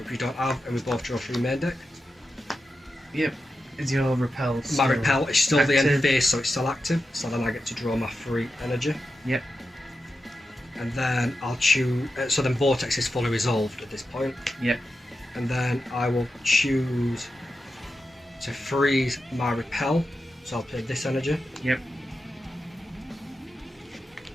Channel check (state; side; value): normal; both; correlation 0.90